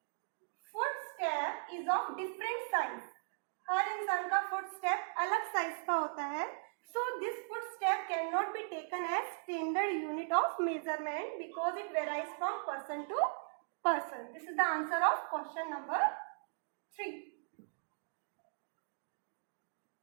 footstep is of different size. हर इंसान का footstep अलग size का होता है. So this footstep cannot be taken as standard unit of measurement because it varies from person to person. This is the answer of question number 3.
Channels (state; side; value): silent; left; digital silence